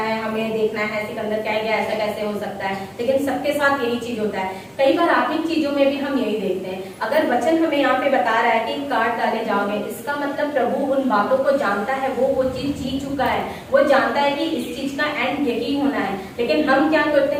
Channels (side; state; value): both; identical; correlation 1.00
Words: है, हमें देखना है सिकंदर क्या गया, ऐसा कैसे हो सकता है, लेकिन सबके साथ यही चीज होता है। कई बार आत्मिक चीजों में भी हम यही देखते हैं। अगर वचन हमें यहाँ पे बता रहा है कि काट डाले जाओगे, इसका मतलब प्रभु उन बातों को जानता है, वो चीज जी चुका है, वो जानता है कि इस चीज का एंड यही होना है। लेकिन हम क्या